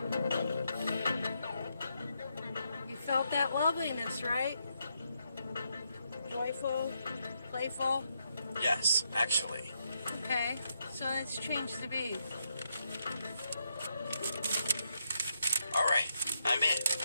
You felt that loveliness, right? Joyful, playful. Yes, actually. Okay, so let's change the beat. All right, I'm in.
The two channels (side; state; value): both; inverted; correlation -0.80